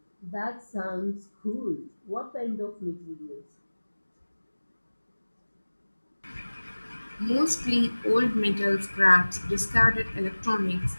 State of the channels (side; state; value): both; inverted; correlation -1.00